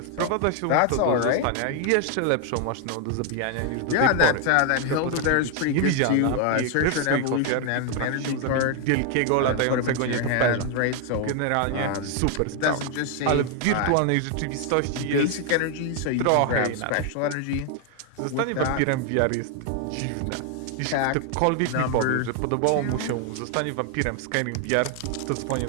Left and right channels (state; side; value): different; both; correlation 0.00